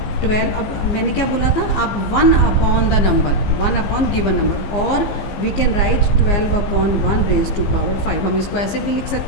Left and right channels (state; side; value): late; right; 15 ms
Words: 12. अब मैंने क्या बोला था, आप 1 upon the number, 1 upon given number, और we can write 12 upon 1 raise to power 5. हम इसको ऐसे भी लिख